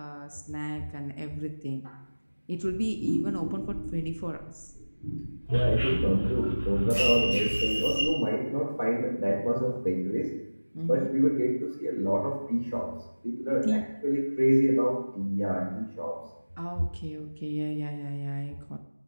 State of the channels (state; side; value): inverted; both; correlation -1.00